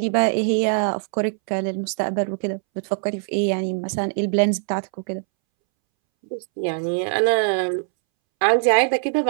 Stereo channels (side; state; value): left; silent; 64 dB below the other